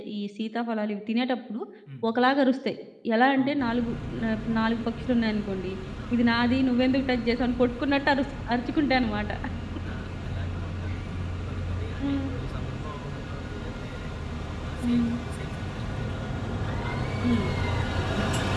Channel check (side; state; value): both; identical; correlation 1.00